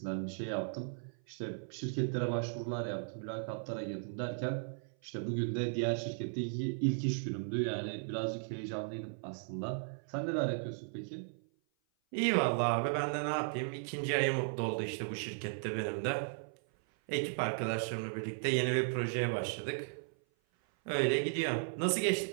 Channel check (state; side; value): silent; left; 54 dB below the other